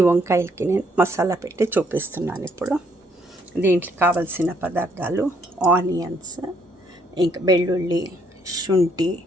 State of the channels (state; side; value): normal; both; correlation 0.69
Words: వంకాయలకి నేను మసాలా పెట్టి చూపిస్తున్నాను ఇప్పుడు. దీంట్లో కావలసిన పదార్థాలు ఆనియన్స్, ఇంకా వెల్లుల్లి, శుంఠి,